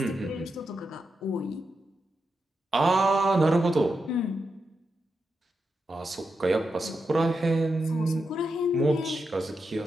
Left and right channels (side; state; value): both; normal; correlation 0.87